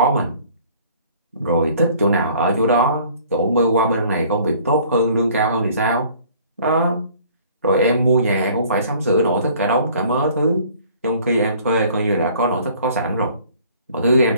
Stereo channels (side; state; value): both; inverted; correlation -0.54